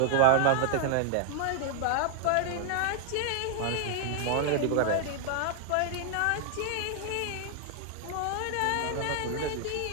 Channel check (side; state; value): both; different; correlation 0.00